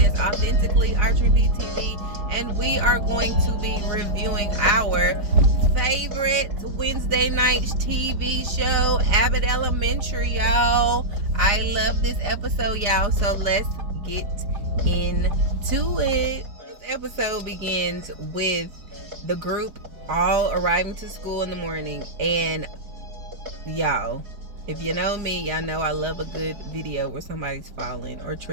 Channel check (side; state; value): left; late; 4.8 ms